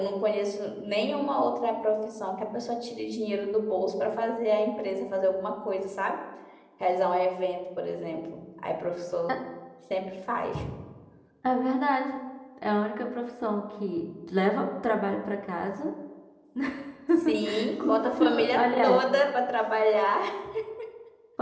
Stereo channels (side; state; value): both; identical; correlation 1.00